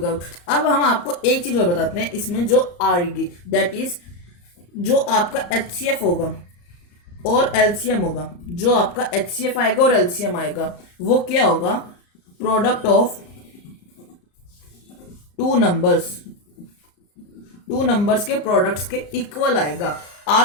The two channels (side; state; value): right; late; 34 ms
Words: अब हम आपको एक चीज और बताते हैं इसमें जो आएगी, दैट इज जो आपका HCF होगा और LCM होगा। जो आपका HCF आएगा और LCM आएगा वो क्या होगा, प्रोडक्ट ऑफ टू नंबर्स के प्रोडक्ट्स के इक्वल आएगा।